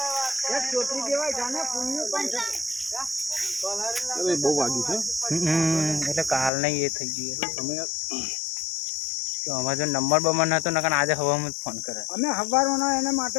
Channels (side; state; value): right; drops out; at 6.5 s